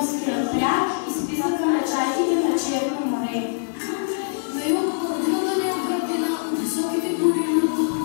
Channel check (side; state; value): right; silent; digital silence